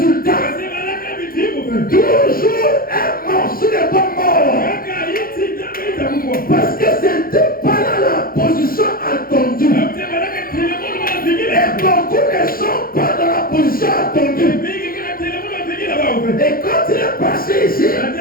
Toujours un morceau de bois mort. Parce que c'était pas là la position attendue. Et beaucoup ne sont pas dans la position attendue. Et quand il est passé ici,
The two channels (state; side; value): late; right; 0.42 ms